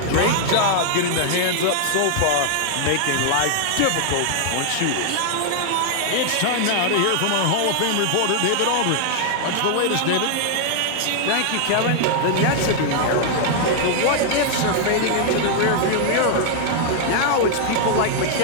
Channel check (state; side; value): different; both; correlation 0.00